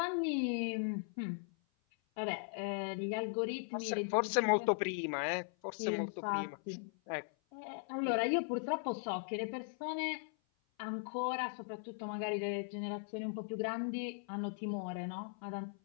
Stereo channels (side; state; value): right; silent; 52 dB below the other